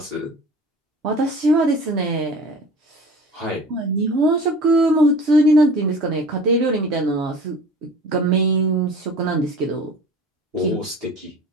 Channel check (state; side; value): normal; both; correlation 0.41